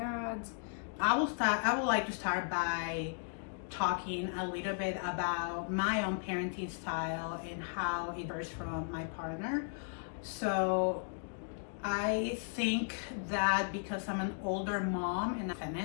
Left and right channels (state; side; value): silent; right; digital silence